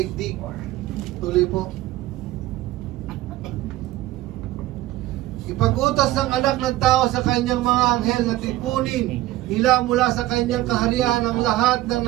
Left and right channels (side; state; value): left; quieter; 16.0 dB